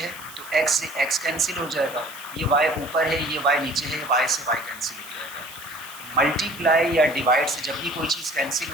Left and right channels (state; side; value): noise; right; hiss, 16 dB below the sound